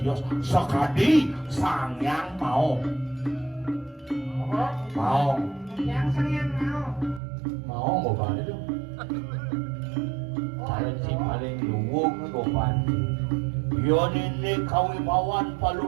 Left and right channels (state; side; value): drops out; left; at 7.2 s